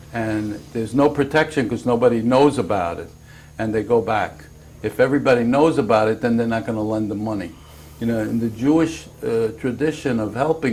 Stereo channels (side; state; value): both; identical; correlation 1.00